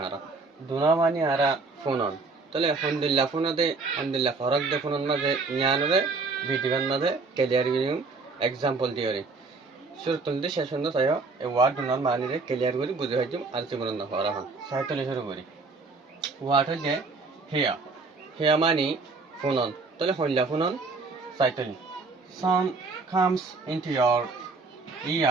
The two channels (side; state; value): left; quieter; 4.0 dB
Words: दुना मानी आरा फोनन. तले हमदिल्ला फरक दे फोनन माजे यानरे भिडियोन माजे क्लियर गिरिम example दियोरे. শুরুতে শেষ পর্যন্ত চাই এই ওয়ার্ড গুণন মানিরে ক্লিয়ার করে বুঝে হইম আর জীবন না হরা হন সাইটলে শুরু করি ওয়ার্ড হচ্ছে হিয়া হিয়া মানি ফোনন তাহলে হইলা phonon সাইটলি sound comes into your